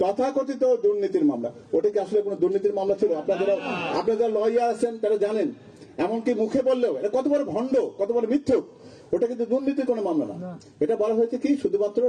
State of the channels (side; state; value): both; identical; correlation 1.00